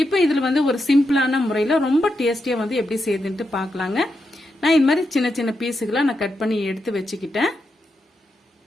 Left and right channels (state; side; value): normal; both; correlation 0.85